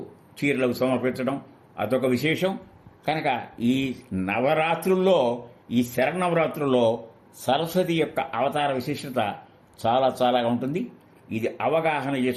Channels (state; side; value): identical; both; correlation 1.00